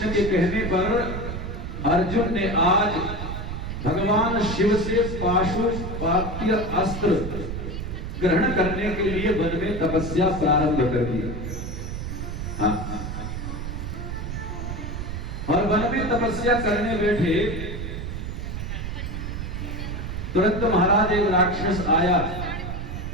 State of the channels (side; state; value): right; noise; rumble, 5 dB below the sound